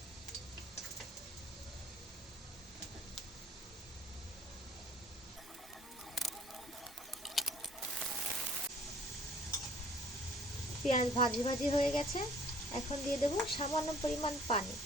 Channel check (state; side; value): normal; both; correlation 0.55